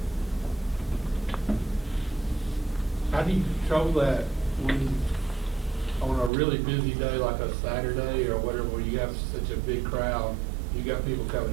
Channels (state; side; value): drops out; left; at 6.3 s